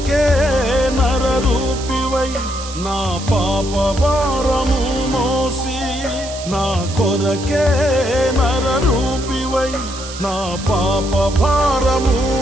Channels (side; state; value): right; noise; hiss, 12 dB below the sound